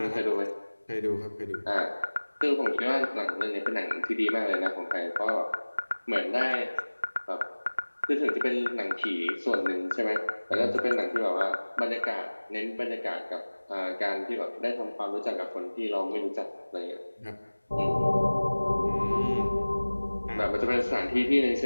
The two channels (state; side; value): inverted; both; correlation -1.00